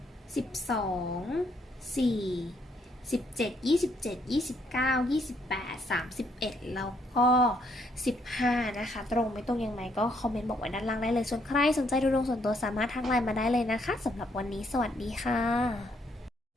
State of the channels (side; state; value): both; normal; correlation 0.71